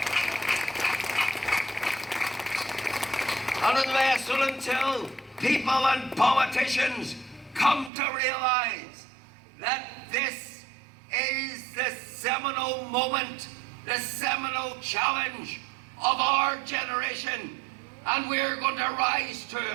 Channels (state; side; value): drops out; left; at 7.9 s